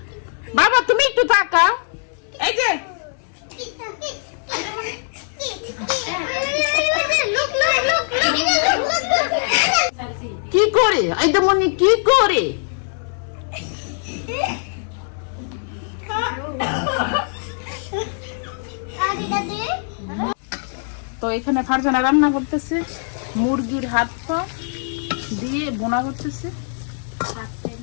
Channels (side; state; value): right; silent; 65 dB below the other